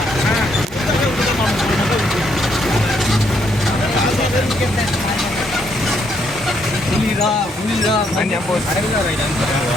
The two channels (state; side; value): normal; both; correlation 0.73